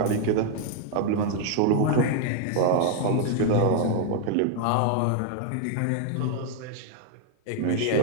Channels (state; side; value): different; both; correlation 0.00